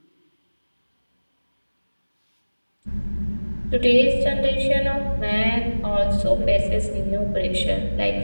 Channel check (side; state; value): both; inverted; correlation -1.00